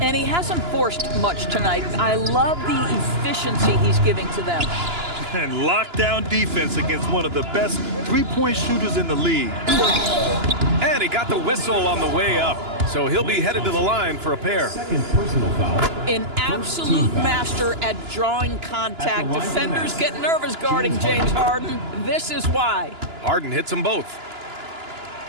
And he hasn't forced much tonight. I love the efficiency he's giving to them. And lockdown defense against one of the best three-point shooters in the league. And he got the whistle on the way up, so he'll be headed to the line for a pair. Second personal foul. An absolute master at drawing contact. Defenders get nervous guarding James Harden. This is why. Harden hits them both.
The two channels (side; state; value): left; late; 2.9 ms